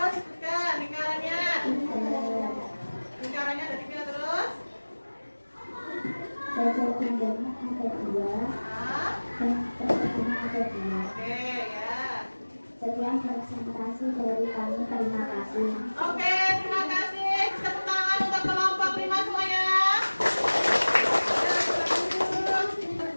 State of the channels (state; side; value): inverted; both; correlation -1.00